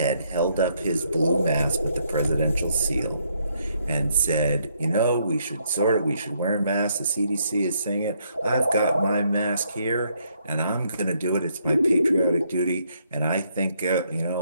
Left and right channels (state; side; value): inverted; both; correlation -0.72